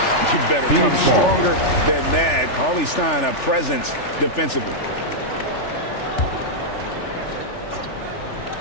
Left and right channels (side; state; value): right; late; 3.4 ms